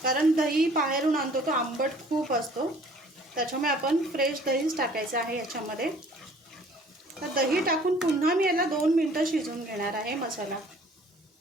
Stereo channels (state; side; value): normal; both; correlation 0.54